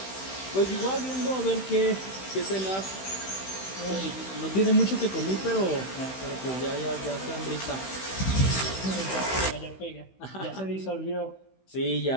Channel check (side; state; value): right; late; 16 ms